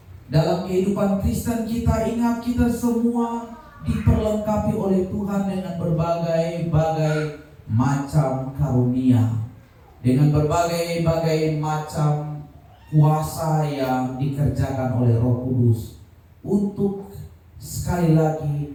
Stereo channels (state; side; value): identical; both; correlation 1.00